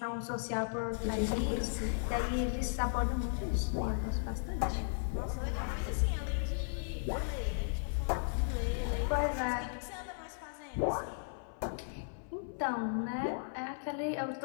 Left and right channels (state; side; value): silent; right; 54 dB below the other